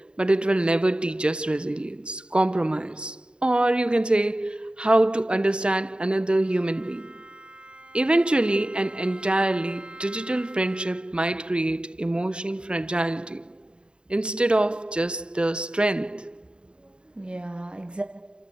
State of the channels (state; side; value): late; left; 0.051 ms